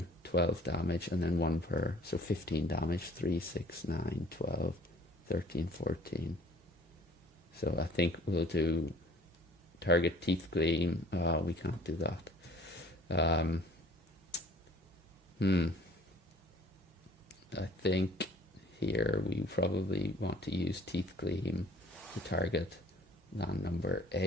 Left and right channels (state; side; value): normal; both; correlation 0.53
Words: 12 damage and then 1 per, so 15 damage, 3, 6, 9, 12, 13, 14. So I think we'll do target teeth gleam. We can't do that. I think here we probably want to use teeth gleam to target land number